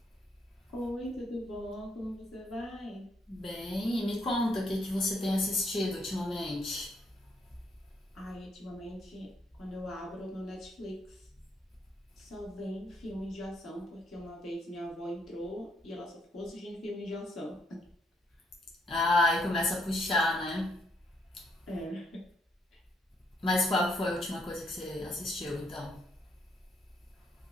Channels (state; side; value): normal; both; correlation 0.73